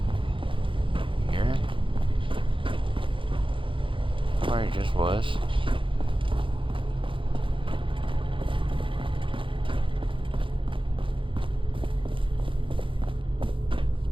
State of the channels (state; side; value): late; left; 0.25 ms